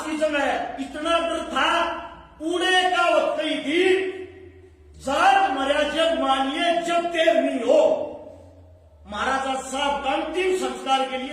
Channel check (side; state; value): both; identical; correlation 1.00